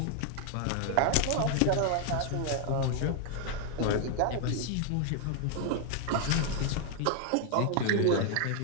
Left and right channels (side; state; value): both; different; correlation 0.00